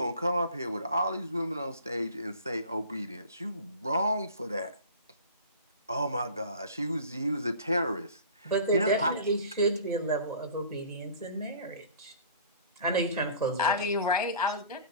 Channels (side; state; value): both; inverted; correlation -0.44